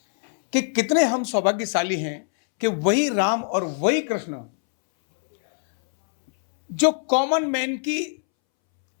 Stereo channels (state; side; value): silent; right; 64 dB below the other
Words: कि कितने हम सौभाग्यशाली हैं कि वही राम और वही कृष्ण जो कॉमन मैन की